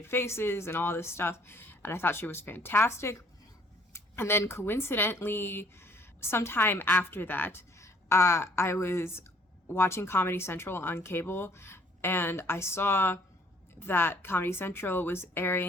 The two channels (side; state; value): both; normal; correlation 0.60